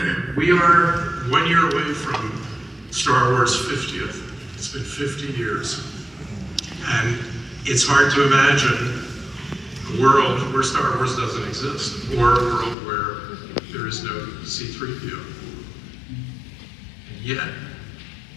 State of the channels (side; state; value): right; drops out; at 12.8 s